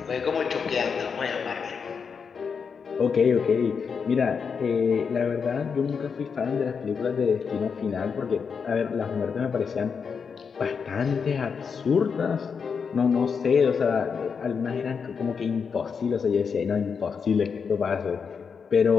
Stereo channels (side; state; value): right; quieter; 6.0 dB